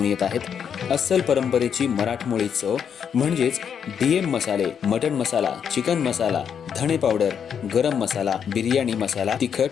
येत आहेत अस्सल परंपरेची मराठमोळी चव म्हणजेच डीएम मसाले. मटन मसाला, चिकन मसाला, धणे पावडर, गरम मसाला, बिर्याणी मसाला,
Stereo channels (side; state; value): right; quieter; 7.7 dB